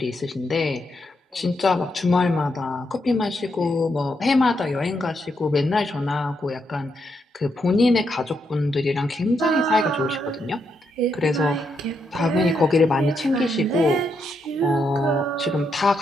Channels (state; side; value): normal; both; correlation 0.80